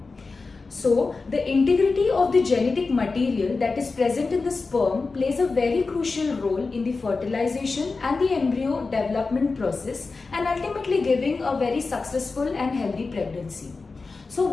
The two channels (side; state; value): right; quieter; 4.1 dB